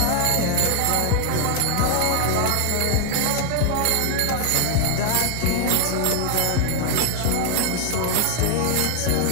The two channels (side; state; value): both; different; correlation 0.00